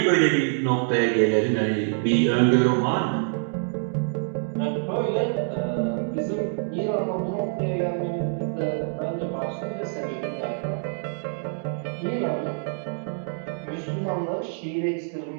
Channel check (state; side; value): silent; left; digital silence